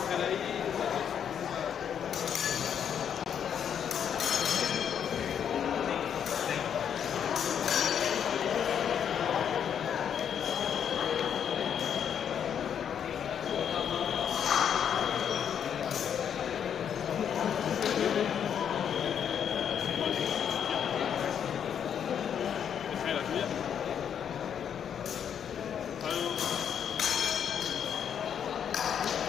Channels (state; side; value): quieter; right; 8.4 dB